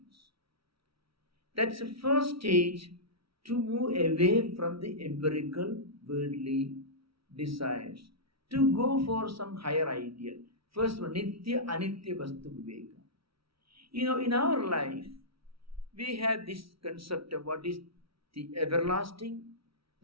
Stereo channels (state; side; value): late; left; 0.75 ms